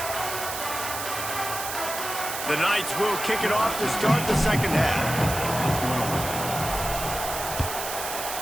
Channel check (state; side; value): noise; right; hiss, 6 dB below the sound